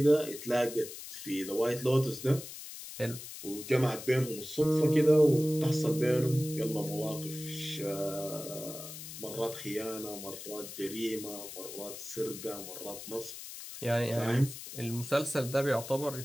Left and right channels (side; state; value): left; noise; hiss, 11 dB below the sound